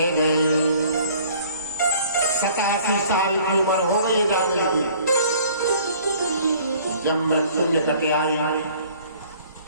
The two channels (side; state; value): both; inverted; correlation -0.54